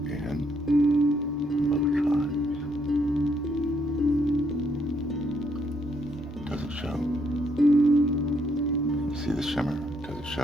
in both sides. Does it show? See the shimmer? Does it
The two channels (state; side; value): normal; both; correlation 0.73